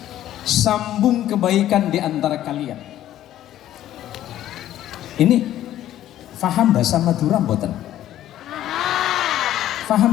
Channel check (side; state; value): right; quieter; 12.6 dB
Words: sambung kebaikan di antara kalian. Ini faham bahasa Madura mboten?